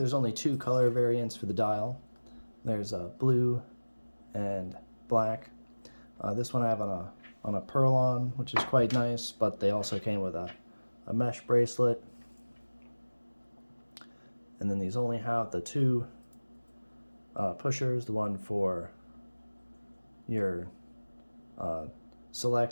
only 2 color variants for the dial. There's blue and black. This one I have on a Perlon, which is quite nice, but they also came with a mesh bracelet. And then these only have the 2 pushers, the one for your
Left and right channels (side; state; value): both; inverted; correlation -1.00